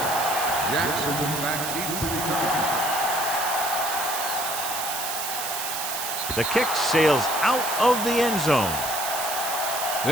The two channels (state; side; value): noise; right; hiss, 4 dB below the sound